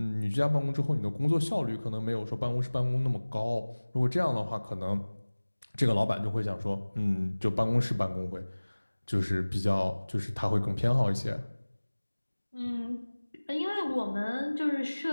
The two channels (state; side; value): inverted; both; correlation -1.00